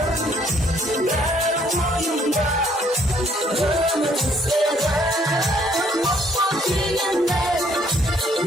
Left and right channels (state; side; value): normal; both; correlation 0.65